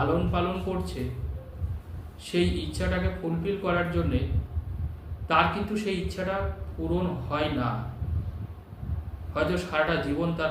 পালন করছে, সেই ইচ্ছাটাকে ফুলফিল করার জন্যে, তার কিন্তু সেই ইচ্ছাটা পূরণ হয় না। হয়তো সারাটা জীবন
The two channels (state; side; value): identical; both; correlation 1.00